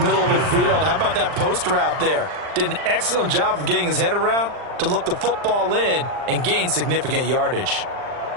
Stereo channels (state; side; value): late; left; 39 ms